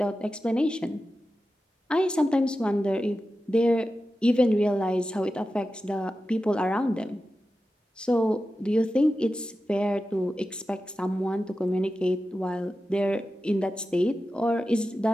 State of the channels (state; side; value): normal; both; correlation 0.92